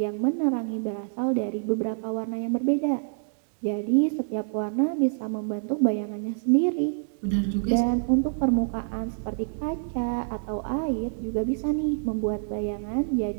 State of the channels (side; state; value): left; silent; digital silence